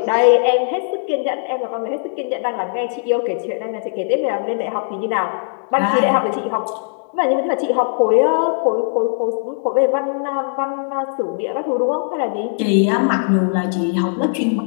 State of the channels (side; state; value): right; silent; digital silence